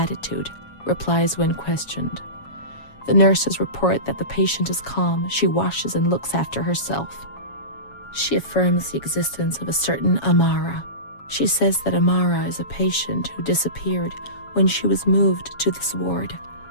replies when questioned. The nurses report that the patient is calm. She washes and looks after herself. She affirms the existence of a certain Amara. She says that Amara is a patient who disappeared when she was moved to this ward.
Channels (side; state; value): right; late; 7.2 ms